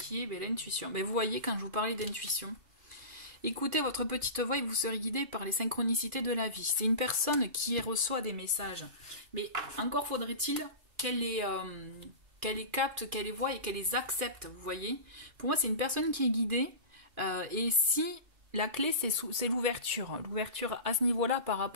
est l'intuition. Vous voyez, quand je vous parlais d'intuition, écoutez votre petite voix et vous serez guidé par les synchronicités de la vie. C'est une personne qui reçoit des messages, mais encore faudrait-il qu'elle les capte, qu'elle les voie et qu'elle les accepte, vous voyez. Pour moi, c'est une personne qui est guidée, et si la clé, c'est l'ouverture. L'ouverture à ce niveau-là par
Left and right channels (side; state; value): left; late; 2.4 ms